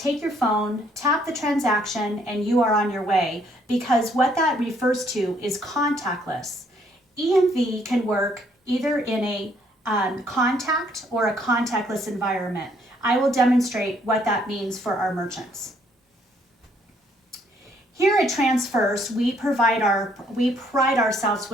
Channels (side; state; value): both; normal; correlation 0.67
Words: your phone, tap the transaction, and you are on your way, because what that refers to is contactless. EMV can work either in a contact or a contactless environment. I will demonstrate what that means for our merchants. Here at TransFirst, we pride ourselves